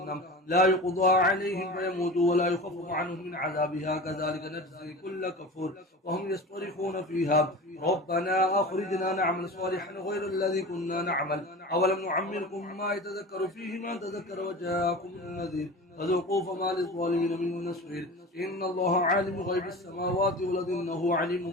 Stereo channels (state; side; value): normal; both; correlation 0.33